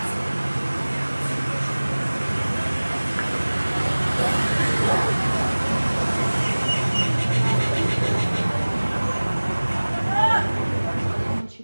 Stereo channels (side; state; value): both; inverted; correlation -1.00